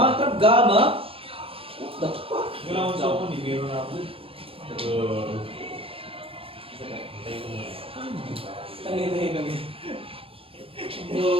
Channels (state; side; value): late; left; 0.27 ms